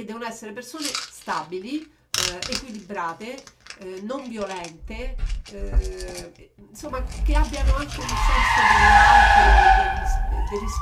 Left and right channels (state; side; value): identical; both; correlation 1.00